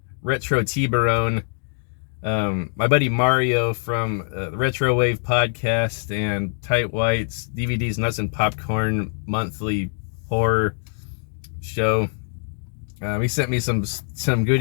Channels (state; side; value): silent; right; digital silence